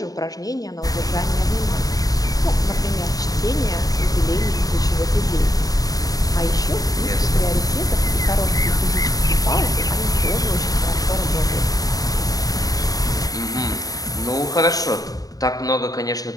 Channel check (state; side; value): late; right; 0.18 ms